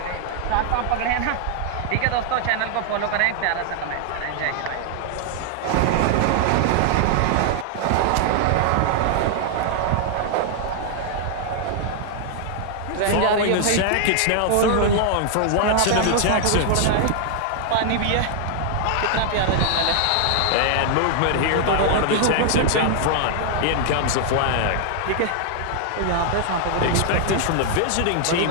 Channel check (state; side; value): different; both; correlation 0.00